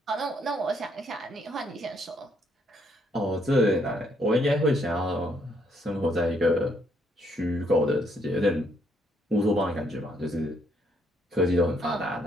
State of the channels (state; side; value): normal; both; correlation 0.71